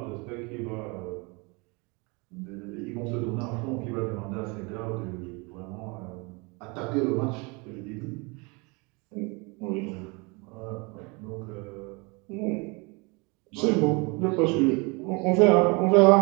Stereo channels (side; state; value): left; quieter; 29.0 dB